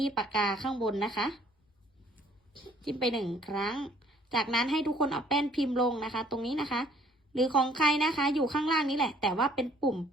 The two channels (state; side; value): normal; both; correlation 0.59